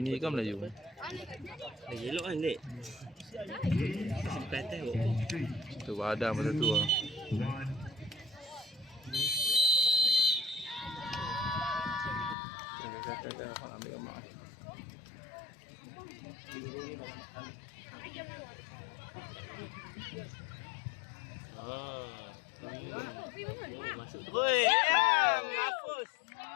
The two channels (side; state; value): right; drops out; at 12.4 s